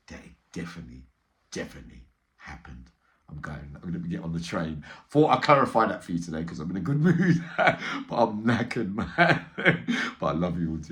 that it definitely happened. I'm going to get on the train. Thought I'd clarify that for you today because I'm in a good mood. But I'm knackered, man. But I love you all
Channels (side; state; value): both; identical; correlation 1.00